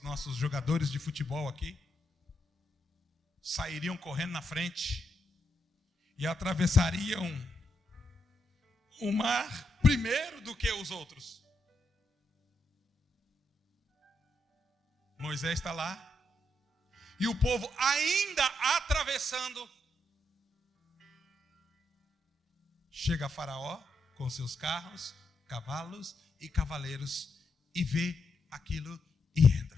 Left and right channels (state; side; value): normal; both; correlation 0.81